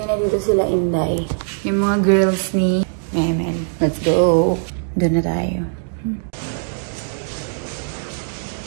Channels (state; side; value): silent; left; digital silence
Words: na dito sila Inday. Yung mga girls ni Memel. Let's go. Doon na tayo.